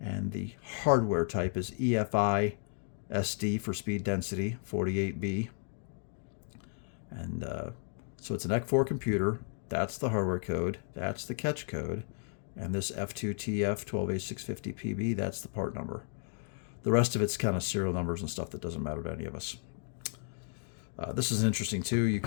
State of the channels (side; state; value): right; silent; 55 dB below the other